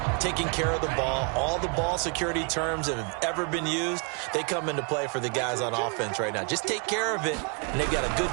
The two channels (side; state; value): left; quieter; 38.1 dB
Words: taking care of the ball, all the ball security terms that have ever been used, they come into play for the guys on offense right now. Just take care of it, and they've got a good